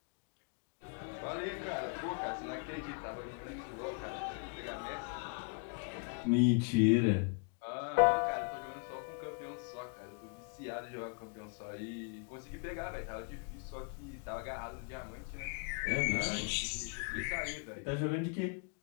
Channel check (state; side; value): quieter; right; 34.9 dB